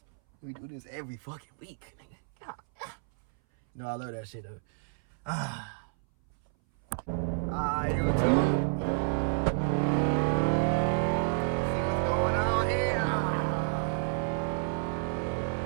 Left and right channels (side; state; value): left; silent; 58 dB below the other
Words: We do this every fucking week, nigga. You know, I love that shit, though. YouTube. See what's going on here.